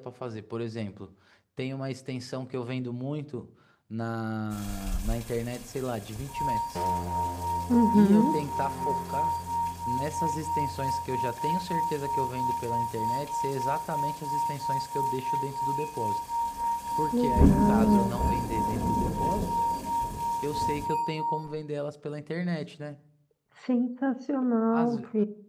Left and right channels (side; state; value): both; identical; correlation 1.00